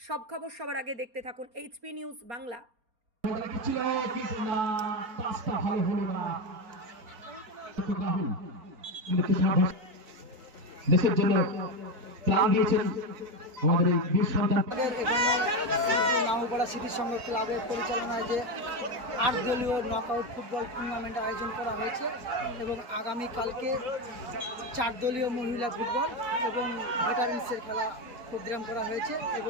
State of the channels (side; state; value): left; late; 4.3 ms